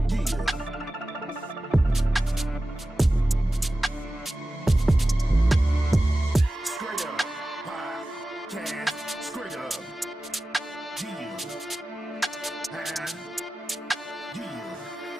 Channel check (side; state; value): both; normal; correlation 0.95